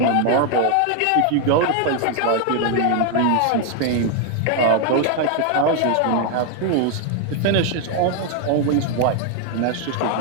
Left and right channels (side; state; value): both; different; correlation 0.00